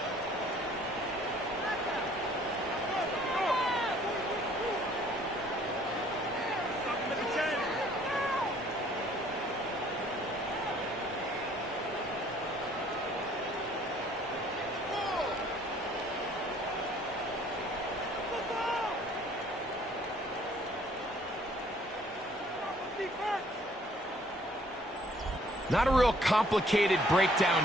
Not a real complicated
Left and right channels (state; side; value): normal; both; correlation 0.59